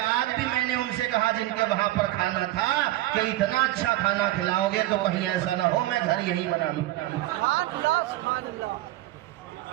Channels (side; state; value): left; quieter; 16.2 dB